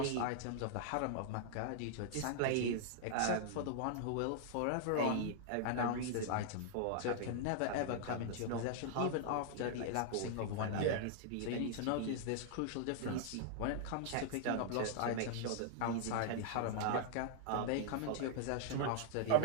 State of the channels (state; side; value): different; both; correlation -0.01